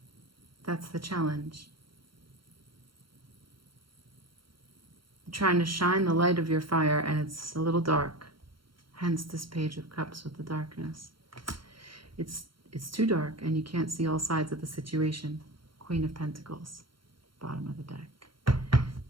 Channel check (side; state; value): left; late; 0.73 ms